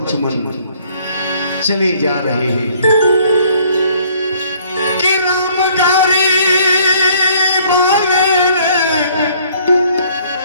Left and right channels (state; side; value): inverted; both; correlation -0.60